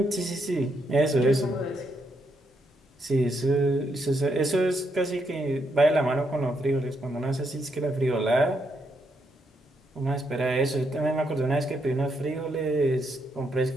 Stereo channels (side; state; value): both; normal; correlation 0.78